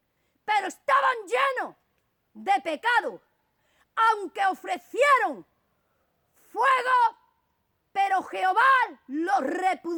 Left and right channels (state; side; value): identical; both; correlation 1.00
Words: pero estaban llenos de pecado, aunque ofrecieron fuego, pero Jehová los